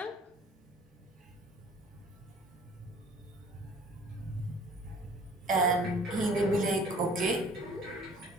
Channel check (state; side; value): normal; both; correlation 0.51